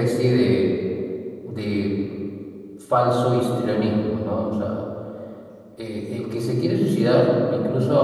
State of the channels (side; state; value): both; identical; correlation 1.00